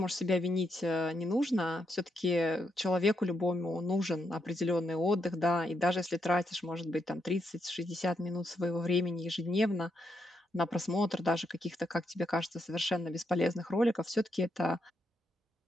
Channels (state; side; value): normal; both; correlation 0.80